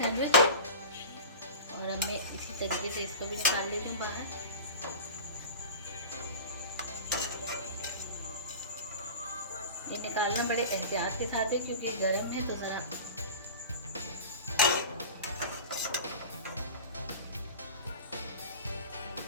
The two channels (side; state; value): both; inverted; correlation -0.34